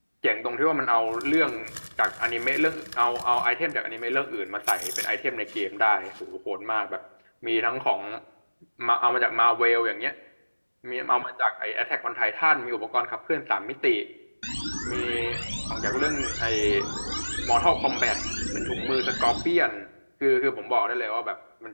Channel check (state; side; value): inverted; both; correlation -1.00